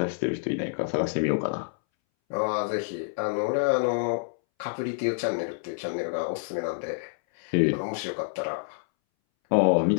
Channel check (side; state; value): right; silent; 60 dB below the other